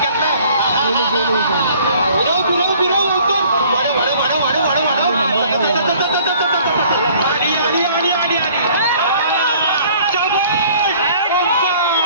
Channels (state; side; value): inverted; both; correlation -0.55